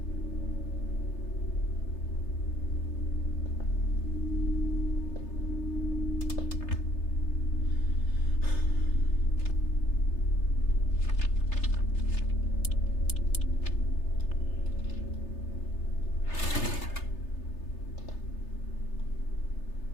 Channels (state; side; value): late; right; 3.3 ms